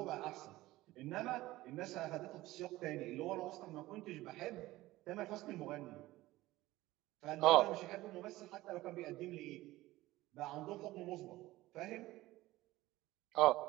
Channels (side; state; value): left; quieter; 17.6 dB